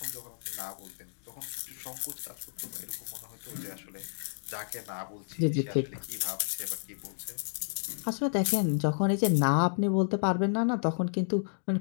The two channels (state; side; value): silent; right; digital silence